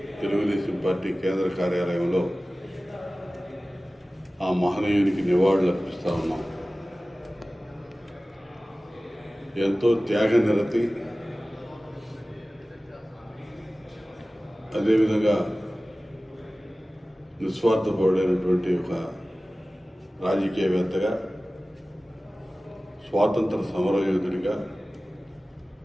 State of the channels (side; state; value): both; normal; correlation 0.97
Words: తెలుగుదేశం పార్టీ కేంద్ర కార్యాలయంలో ఆ మహనీయునికి నివాళులు అర్పిస్తా ఉన్నాం. ఎంతో త్యాగనిరతి, అదేవిధంగా నిస్వార్థపరుడైనటువంటి ఒక రాజకీయవేత్తగా, స్వాతంత్ర సమరయోధుడిగా,